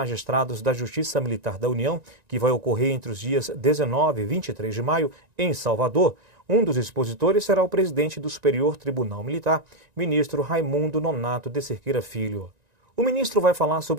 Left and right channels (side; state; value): left; late; 1.9 ms